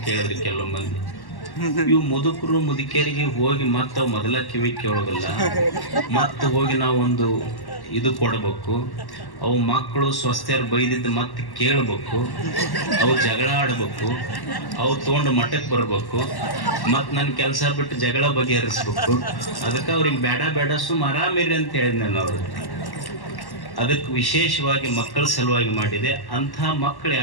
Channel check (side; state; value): right; late; 1.1 ms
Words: ಕೇಳಿದ್ರಿ ಕೆಲವು ಮಂದಿ. ಇವು ಮುದುಕರು ಮುದುಕಿಯರಿಗೆ ಹೋಗಿ ಮತ್ತೆ ಅವು ಮೊದಲ ಕಿವಿ ಕೇಳೋದಿಲ್ಲ, ಮತ್ತೆ ಹೋಗಿ ನಾವೊಂದು ಇದು ಕೊಡಬೇಕು. ಅವು ಮಕ್ಕಳು ಸ್ವಸ್ಥರು ಬೈದಿದ್ದು ಮತ್ತೆ ಕೇಳಬೇಕು, ಅವು ಜಗಳ ಆಡ್ಬೇಕು, ಅವು ತೊಗೊಂಡು ಮಠಕ್ಕೆ ಬರ್ಬೇಕು, ಮತ್ತು ನನ್ನ ಕೆಲಸ ಬಿಟ್ಟು ಜಗಳ ಬಗೆಹರಿಸ್ಬೇಕು. ಅದಕ್ಕೆ ಅವ್ರಿಗೆ ಬೇಡ ಸುಮ್ಮ ಆರಾಮಿರಿ ಅಂತ ಹೇಳಿದ್ ನಾನು ಅವ್ರಿಗೆ. ಅದಕ್ಕೆ ವಿಶೇಷವಾಗಿ ಮಕ್ಕಳ ಸಲುವಾಗಿ ಮಾಡಿದೆ. ಅಂಥ ಮಕ್ಕಳು